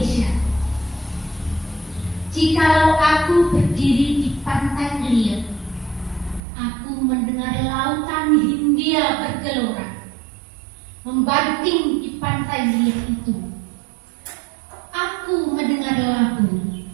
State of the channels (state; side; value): drops out; left; at 6.4 s